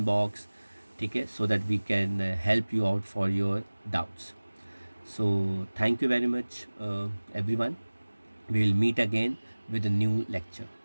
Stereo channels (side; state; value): both; inverted; correlation -1.00